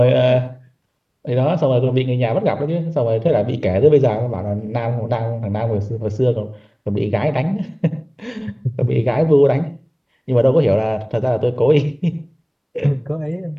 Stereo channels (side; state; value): both; identical; correlation 1.00